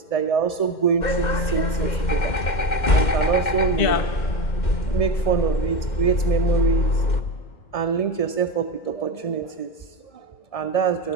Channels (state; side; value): late; right; 2.1 ms